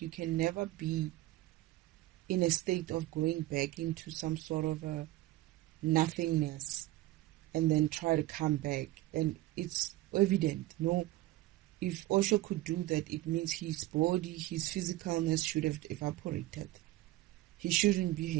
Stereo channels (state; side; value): quieter; left; 17.0 dB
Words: you can never be in a state of going back into some sort of a nothingness and then try to come back. And it's evident, no? If Osho could do that, it means his body, his physicalness should have evaporated. He shouldn't be